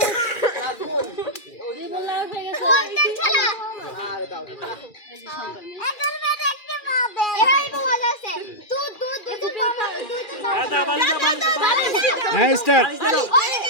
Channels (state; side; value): late; right; 2.4 ms